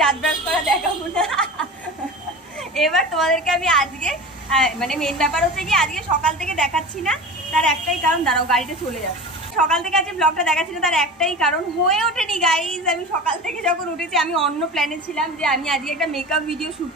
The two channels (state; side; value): normal; both; correlation 0.31